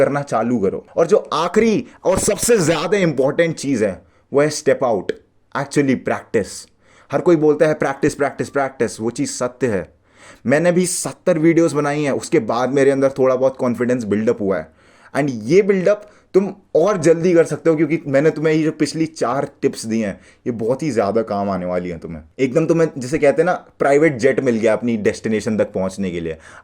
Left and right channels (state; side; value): identical; both; correlation 1.00